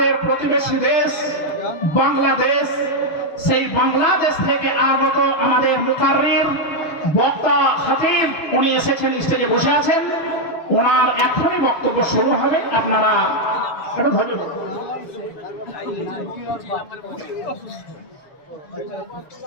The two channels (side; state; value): right; late; 6.8 ms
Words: প্রতিবেশী দেশ বাংলাদেশ, সেই বাংলাদেশ থেকে আগত আমাদের মুকাররির বক্তা খতিব, উনি এসেছেন, স্টেজে বসে আছেন। ওনার এখনই বক্তব্য শুরু হবে, আপনারা একটু ধৈর্য ধরুন।